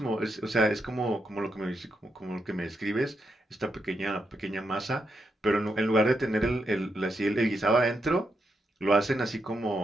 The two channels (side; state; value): both; normal; correlation 0.83